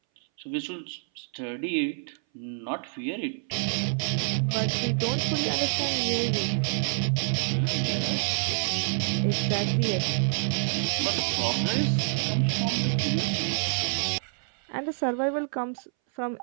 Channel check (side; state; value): left; silent; 60 dB below the other